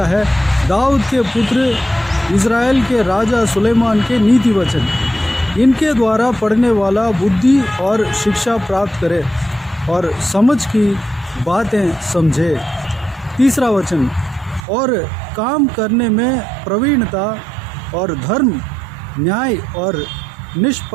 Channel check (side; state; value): left; drops out; at 14.6 s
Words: है, दाऊद के पुत्र इज़राइल के राजा सुलेमान के नीति वचन, इनके द्वारा पढ़ने वाला बुद्धि और शिक्षा प्राप्त करे और समझ की बातें समझे। तीसरा वचन, और काम करने में प्रवीणता और धर्म, न्याय और